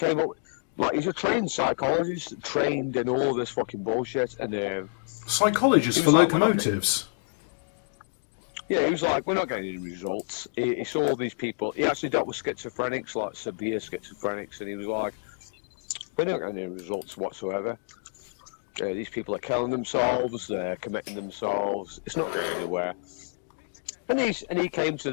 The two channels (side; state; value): right; silent; digital silence